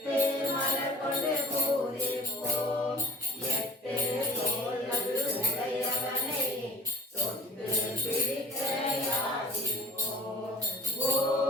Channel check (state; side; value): normal; both; correlation 0.48